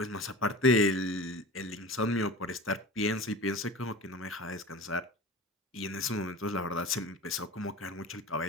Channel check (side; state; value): both; normal; correlation 0.35